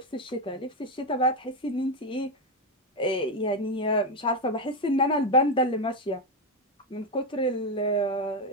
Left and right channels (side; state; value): both; normal; correlation 0.08